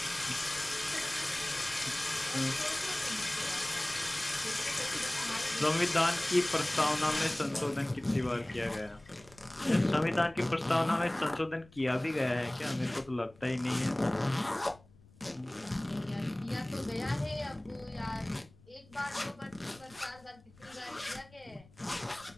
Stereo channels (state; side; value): noise; left; rumble, 26 dB below the sound